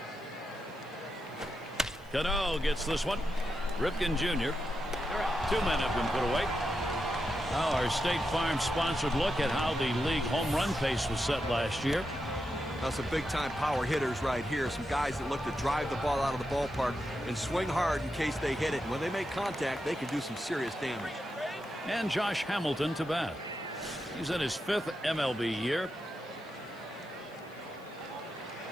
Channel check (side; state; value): left; noise; hiss, 29 dB below the sound